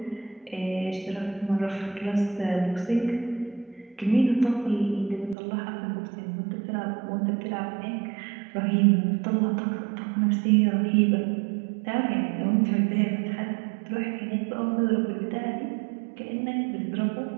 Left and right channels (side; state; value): left; drops out; at 5.4 s